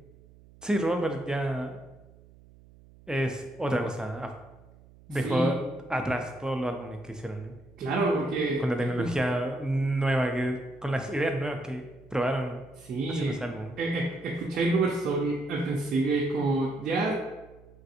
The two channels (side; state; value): right; noise; hum, 24 dB below the sound